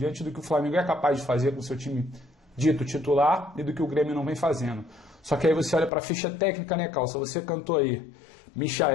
do que o Flamengo é capaz de fazer com o seu time dito titular e do que o Grêmio não vem fazendo. Só que aí você olha para a ficha técnica, né, Calça? Você cantou aí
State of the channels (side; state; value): right; drops out; at 5.9 s